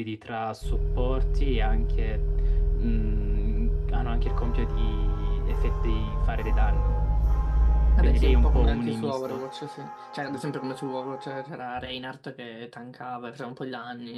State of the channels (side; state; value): both; identical; correlation 1.00